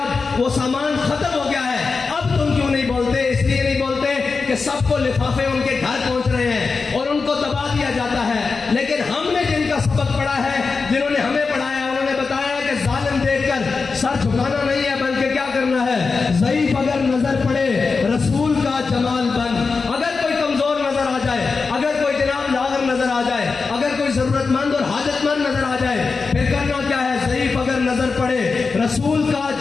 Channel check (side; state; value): right; quieter; 4.6 dB